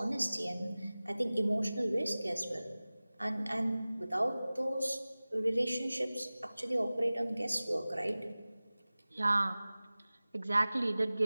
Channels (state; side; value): inverted; both; correlation -0.98